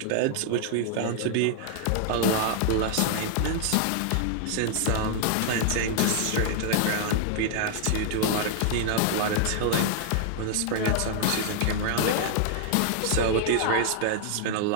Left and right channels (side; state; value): both; different; correlation 0.00